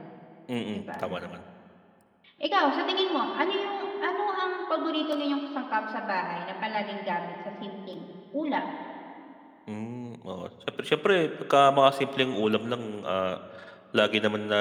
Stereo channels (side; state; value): both; identical; correlation 1.00